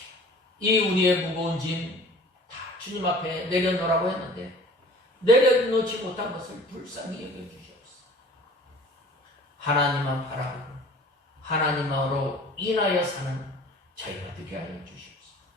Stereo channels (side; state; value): both; normal; correlation 0.47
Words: 이 우리의 무거운 짐 다 주님 앞에 내려놓으라고 했는데 내려놓지 못한 것을 불쌍히 여겨주시옵소서. 하나님만 바라보고 하나님으로 인하여 사는 저희가 되게 하여 주시옵소서.